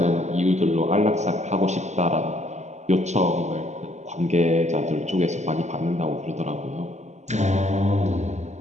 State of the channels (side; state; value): left; late; 0.33 ms